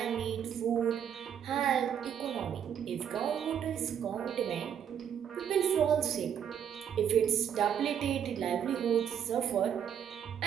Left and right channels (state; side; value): quieter; left; 8.7 dB